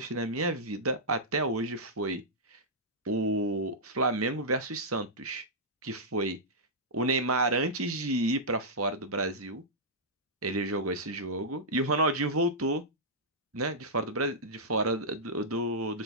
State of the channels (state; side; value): normal; both; correlation -0.12